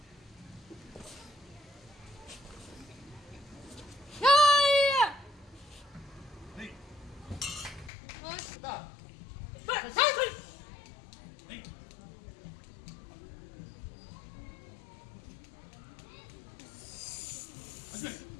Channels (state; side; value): drops out; right; at 7.9 s